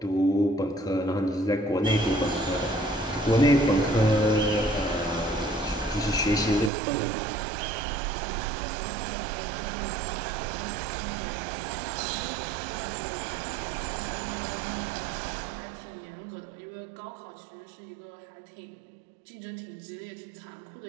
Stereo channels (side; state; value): left; drops out; at 6.7 s